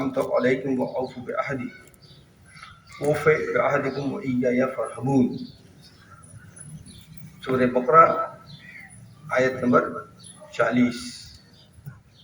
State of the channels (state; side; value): identical; both; correlation 1.00